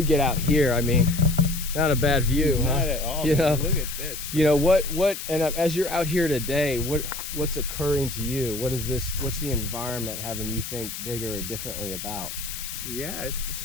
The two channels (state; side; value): noise; left; hiss, 8 dB below the sound